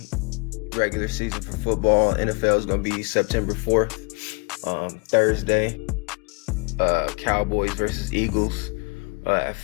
Regular season for football, NFL is gonna be September 4th, Thursday. Cowboys versus Eagles at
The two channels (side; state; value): right; quieter; 32.4 dB